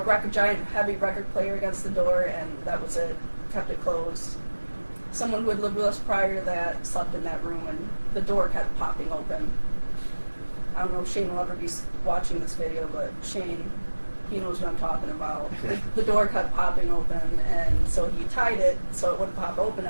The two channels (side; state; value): both; inverted; correlation -1.00